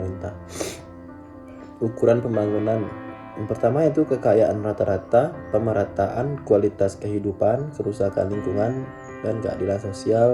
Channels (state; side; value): identical; both; correlation 1.00